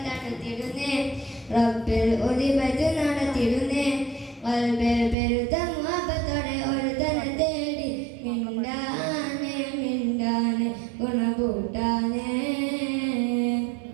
തടുത്തിടുന്നേ റബ്ബിൽ ഒലിപത് നടത്തിടുന്നേ വൽബിൽ പെരുത്ത മുഹബത്തോടെ ഒരു തന തേടി മിണ്ടാനെ മിണ്ടാനെ ഗുണകൂട്ടാനെ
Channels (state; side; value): drops out; left; at 5.2 s